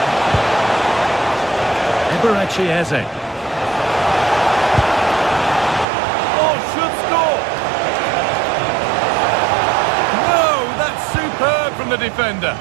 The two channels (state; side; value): drops out; left; at 5.9 s